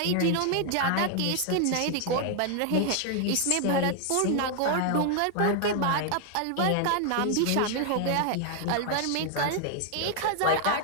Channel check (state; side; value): different; both; correlation 0.00